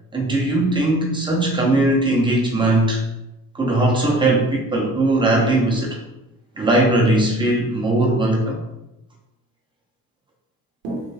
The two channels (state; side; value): normal; both; correlation 0.49